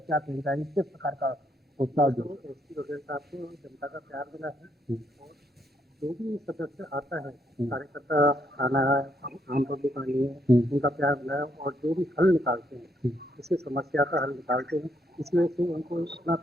क्या कहना है, किस प्रकार का उत्साह जो एसपी बघेल साहब को जनता का प्यार मिला है और जो भी सदस्य आता है, कार्यकर्ता आना है, आम पब्लिक आनी है, उनका प्यार मिला है और जो भी हल निकालते हैं, इसी समस्या का हल निकालते हैं, इस वजह से उनको इतना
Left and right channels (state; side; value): normal; both; correlation 0.74